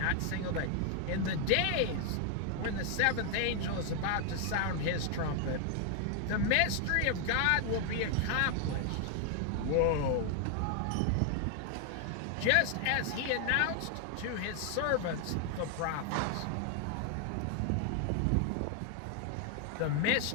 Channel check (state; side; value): different; both; correlation 0.00